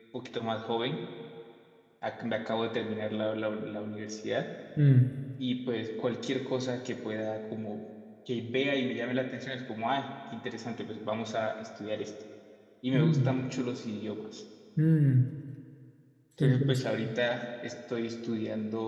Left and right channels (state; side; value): identical; both; correlation 1.00